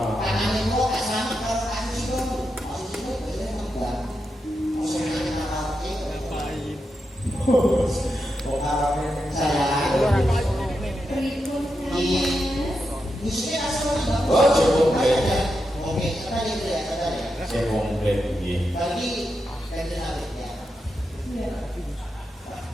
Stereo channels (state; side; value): normal; both; correlation 0.86